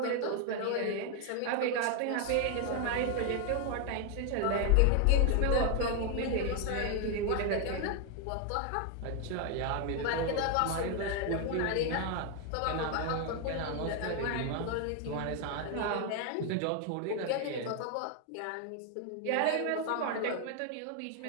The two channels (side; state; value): both; different; correlation 0.00